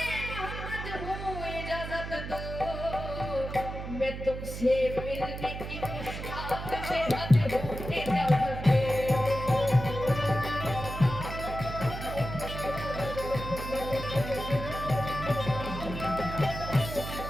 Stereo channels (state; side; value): noise; right; hum, 7 dB below the sound